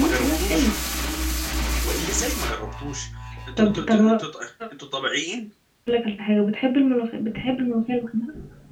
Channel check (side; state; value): both; identical; correlation 1.00